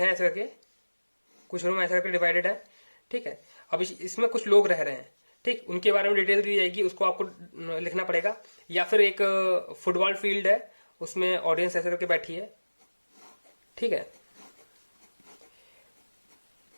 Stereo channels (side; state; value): both; inverted; correlation -1.00